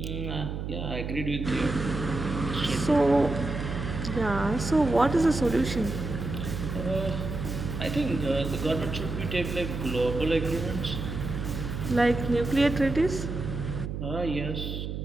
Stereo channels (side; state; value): right; noise; hum, 5 dB below the sound